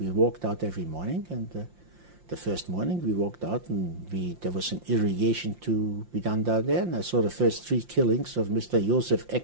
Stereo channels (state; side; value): late; left; 5.7 ms